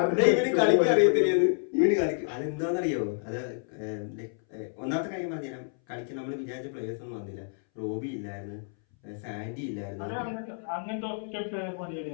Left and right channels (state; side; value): silent; right; 58 dB below the other